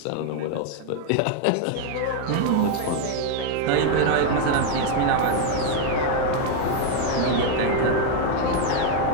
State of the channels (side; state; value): both; different; correlation 0.01